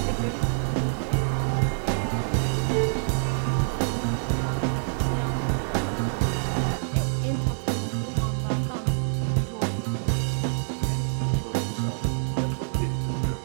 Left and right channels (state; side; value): silent; left; digital silence